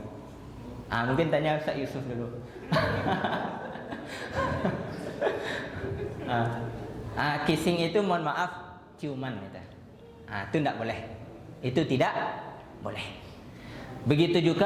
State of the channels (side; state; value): both; identical; correlation 1.00